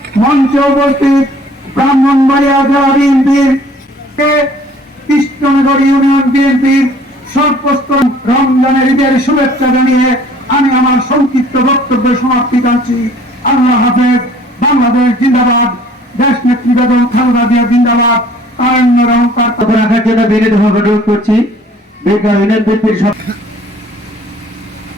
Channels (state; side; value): normal; both; correlation 0.54